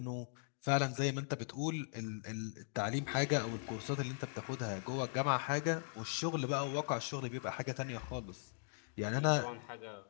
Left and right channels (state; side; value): silent; right; digital silence